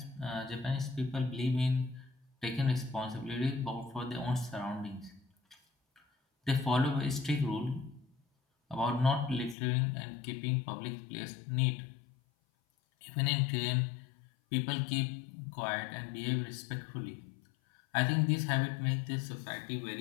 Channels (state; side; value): drops out; right; at 9.6 s